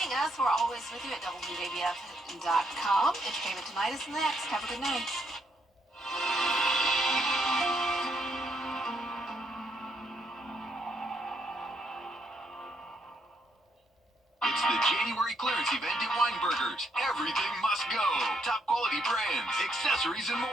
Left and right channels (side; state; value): both; normal; correlation 0.74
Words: us. We're always with you at WJBF.com. Entertainment Tonight is next. Have a good night. It's the January clearance event at Weinberger's. Everything must go. Top quality brands, accessories, and